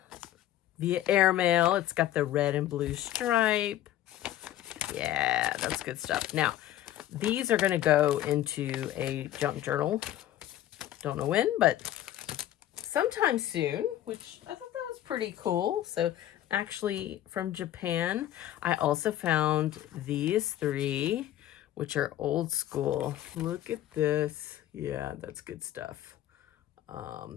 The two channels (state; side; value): quieter; right; 12.9 dB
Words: Via airmail. It's got the red and blue stripe. Yeah, that's good stuff. Now, these are going to go into a junk journal. Don't know when, but sometime soon, which I thought that was pretty cool. So actually from Japan, I also found these three, which are old school. Look at this. Yeah, that's good stuff.